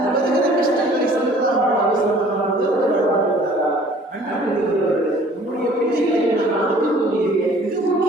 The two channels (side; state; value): both; normal; correlation 0.53